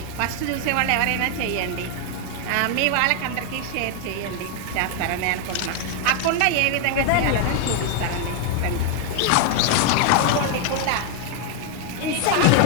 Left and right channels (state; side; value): different; both; correlation 0.00